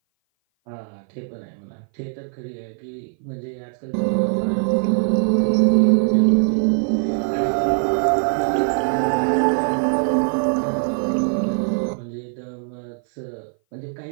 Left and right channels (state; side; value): silent; left; 58 dB below the other